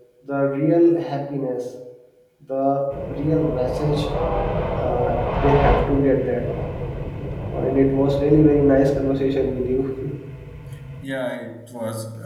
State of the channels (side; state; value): both; identical; correlation 1.00